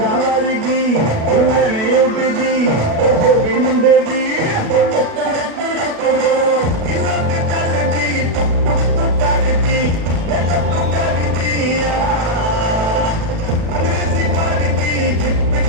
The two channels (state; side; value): late; left; 36 ms